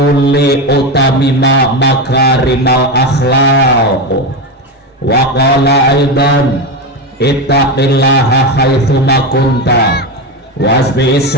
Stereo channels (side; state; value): both; normal; correlation 0.15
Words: li utamima makarimal akhlaq. Wa qala aidan, ittaqillaha haitsuma kunta wasbi